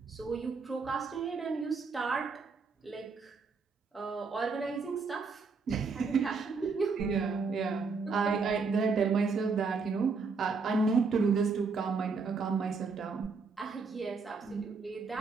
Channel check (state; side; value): quieter; left; 4.7 dB